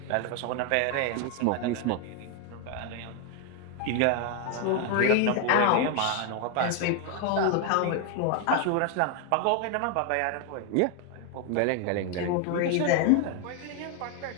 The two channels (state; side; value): different; both; correlation 0.01